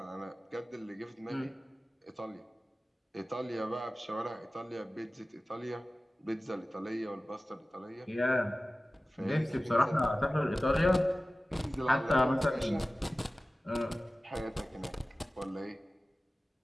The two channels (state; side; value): normal; both; correlation 0.96